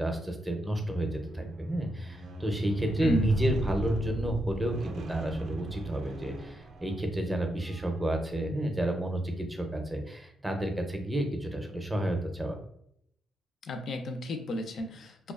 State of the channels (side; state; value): both; normal; correlation 0.83